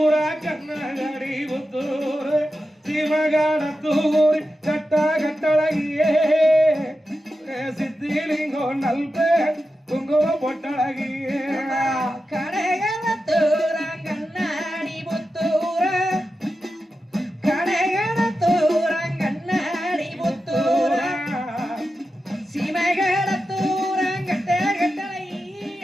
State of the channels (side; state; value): both; normal; correlation 0.91